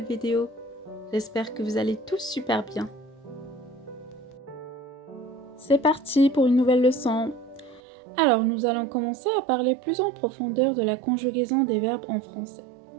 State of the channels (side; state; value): left; drops out; at 7.8 s